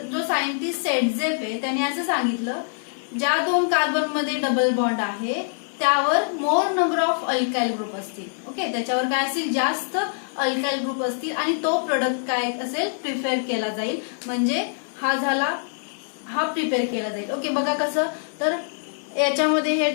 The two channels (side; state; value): right; silent; digital silence